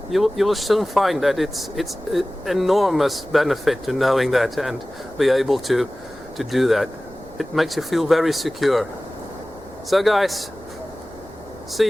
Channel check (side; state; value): right; noise; rumble, 22 dB below the sound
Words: you will soon find that it's an enormous benefit to knowing that and be able to do that. It makes you feel very secure. So guys, see